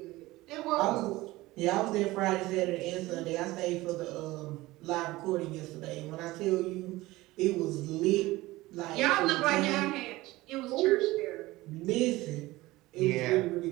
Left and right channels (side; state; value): left; quieter; 18.9 dB